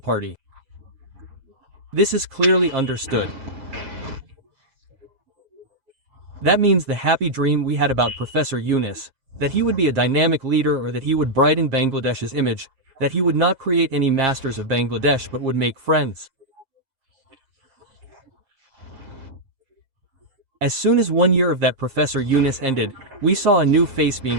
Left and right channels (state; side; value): late; left; 7.5 ms